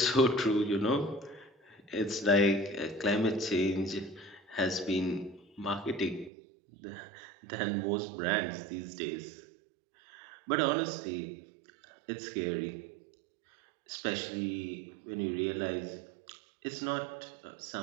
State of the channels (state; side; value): drops out; left; at 6.3 s